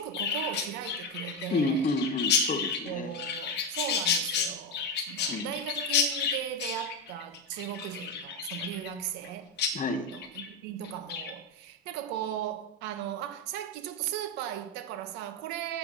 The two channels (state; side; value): normal; both; correlation 0.11